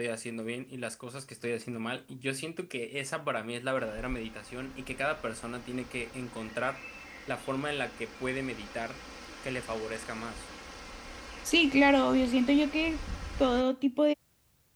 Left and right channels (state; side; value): identical; both; correlation 1.00